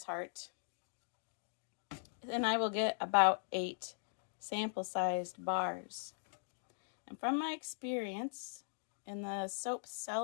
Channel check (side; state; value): right; silent; digital silence